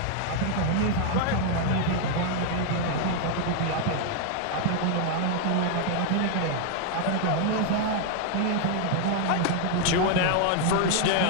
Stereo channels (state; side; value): different; both; correlation 0.00